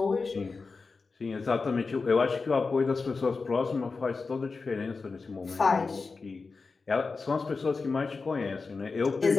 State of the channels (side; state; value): right; quieter; 4.3 dB